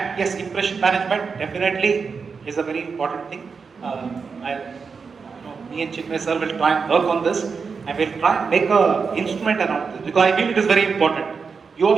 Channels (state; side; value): quieter; left; 5.3 dB